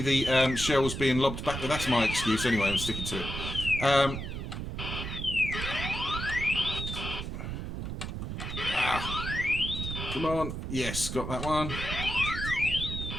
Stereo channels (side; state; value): right; noise; rumble, 5 dB below the sound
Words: the shells being lobbed back. Well, that's my excuse anyway, I'm sticking to it. Come on. Yes, got that one.